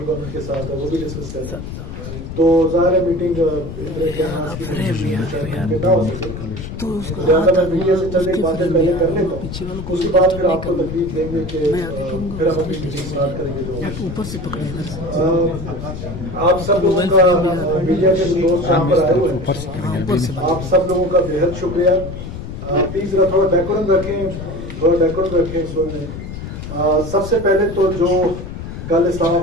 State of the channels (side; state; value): left; noise; rumble, 9 dB below the sound